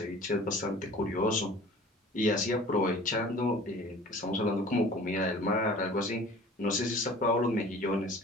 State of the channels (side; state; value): both; normal; correlation 0.45